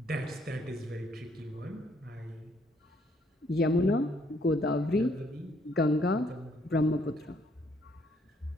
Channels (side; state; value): both; normal; correlation 0.68